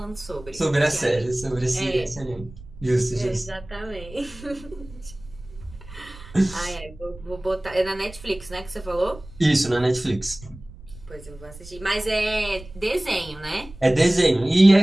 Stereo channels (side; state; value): right; noise; rumble, 18 dB below the sound